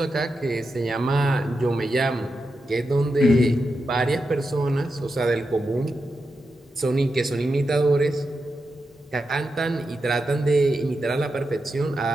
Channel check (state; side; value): normal; both; correlation 0.88